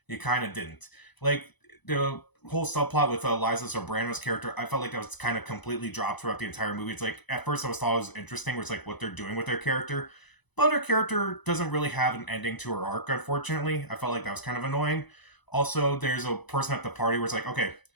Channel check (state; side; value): late; right; 1.0 ms